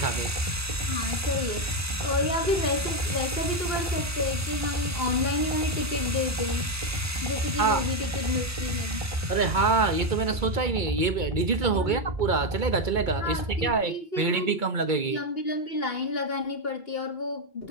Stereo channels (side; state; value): both; normal; correlation 0.07